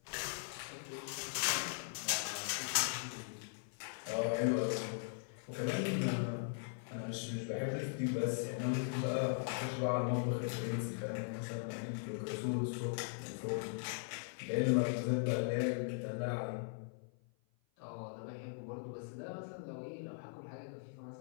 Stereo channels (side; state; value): right; silent; 51 dB below the other